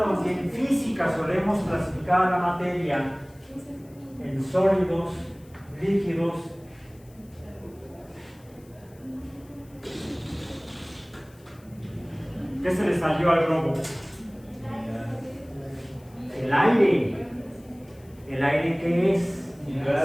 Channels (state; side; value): noise; left; hiss, 28 dB below the sound